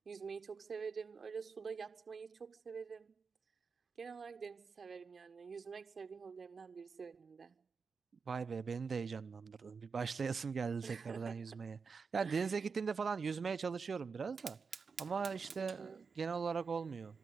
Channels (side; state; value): left; quieter; 5.3 dB